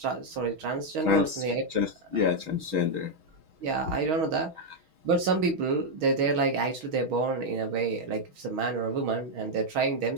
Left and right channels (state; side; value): late; left; 6.3 ms